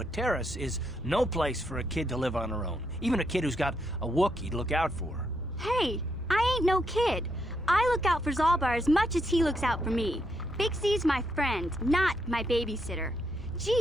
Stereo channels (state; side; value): normal; both; correlation 0.78